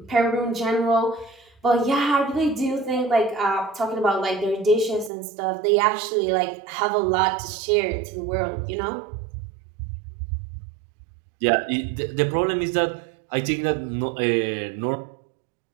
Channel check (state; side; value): drops out; left; at 5.1 s